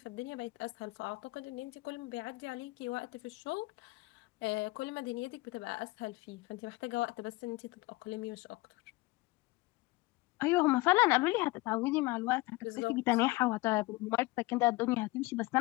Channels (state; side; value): quieter; right; 21.6 dB